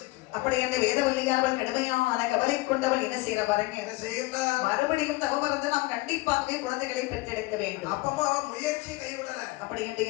அப்படி அந்த வேதவல்லியானவள் கடுமையான கவலை கொண்டவள் என்ன செய்யற பாருங்க. என்ன செய்யறா? மறுபடியும் தவம் இருந்து நாம் கண்டிப்பாகவே குழந்தைகளை பெற்றெடுக்க வேண்டும். அப்பமா முயற்சி கைவிடல. அப்படி என்று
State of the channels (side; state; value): right; quieter; 21.7 dB